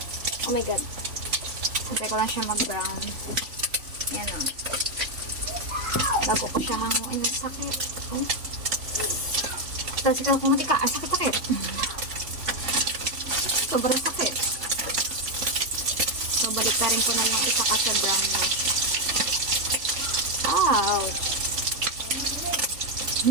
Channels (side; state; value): left; late; 3.5 ms